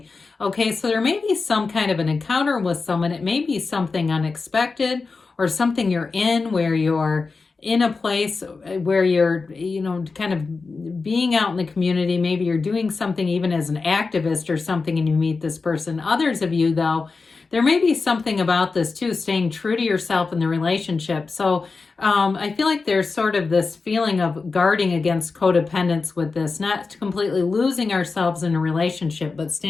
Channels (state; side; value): quieter; right; 4.3 dB